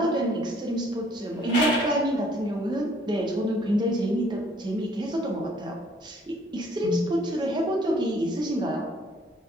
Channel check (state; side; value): normal; both; correlation 0.61